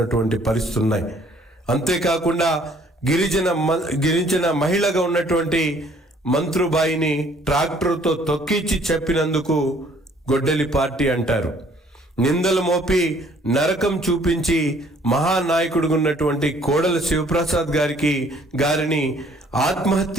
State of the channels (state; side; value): normal; both; correlation 0.59